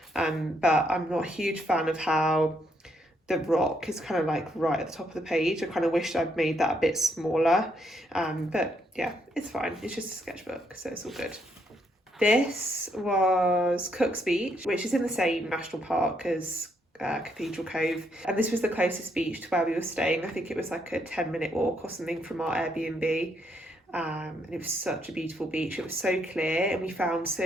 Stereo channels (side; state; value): both; normal; correlation 0.75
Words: but I'm not a huge fan of how the rock is kind of like right at the top of the page. I kind of wished I'd made that a bit smaller, but yeah, it's fine. It's just a sketchbook, so it's all good. This was Cook's Beach, which is in the same national park as Cathedral Cove, and this was the closest beach to where we were staying. I think it was like a 10-minute walk or something from our Airbnb, and it was such a beautiful beach. It was so clear, and we found